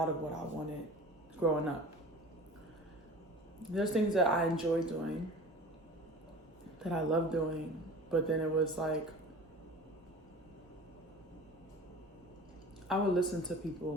of what I wanted growing up. There's things that I enjoy doing, that I love doing, but then it was like, I would listen to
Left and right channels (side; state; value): both; normal; correlation 0.40